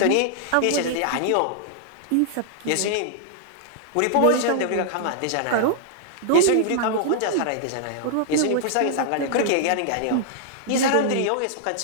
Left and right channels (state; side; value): different; both; correlation -0.01